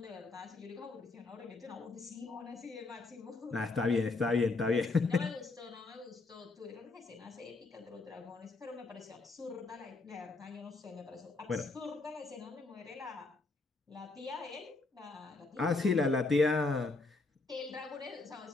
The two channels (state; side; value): quieter; right; 3.6 dB